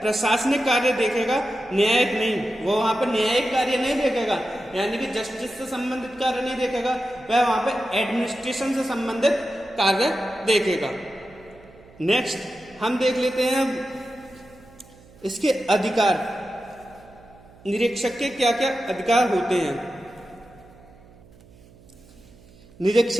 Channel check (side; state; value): right; noise; hum, 25 dB below the sound